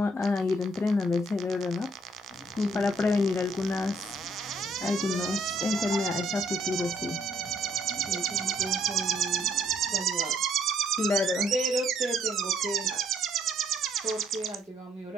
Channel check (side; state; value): both; normal; correlation 0.67